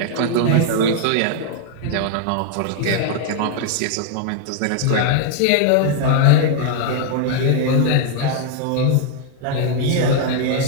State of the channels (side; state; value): both; different; correlation 0.00